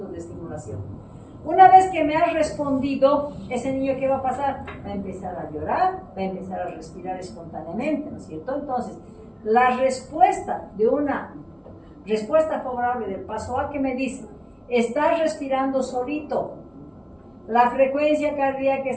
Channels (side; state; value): both; identical; correlation 1.00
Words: de estimulación. Una vez que me ha respondido, ese niño, ¿qué va a pasar? Va a empezar a llorar, va a empezar a respirar espontáneamente, ¿no es cierto? Entonces, la respuesta de una respuesta favorable del paso A, que me dice, estás respirando solito, la frecuencia cardíaca